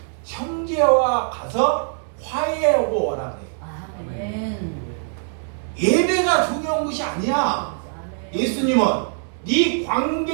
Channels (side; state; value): left; silent; digital silence